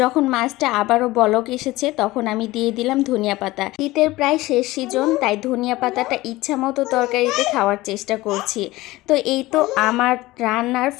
যখন মাছটা আবারও বলক এসেছে তখন আমি দিয়ে দিলাম ধনিয়া পাতা। শীতের প্রায় শেষ সিজন, তাই ধনিয়া পাতাটা ইচ্ছা মতো তরকারিতে খাওয়ার চেষ্টা করছি। তো এই তো আমার রান্নার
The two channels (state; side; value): quieter; right; 18.8 dB